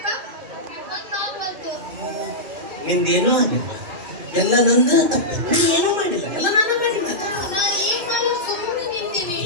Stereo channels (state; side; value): late; left; 2.8 ms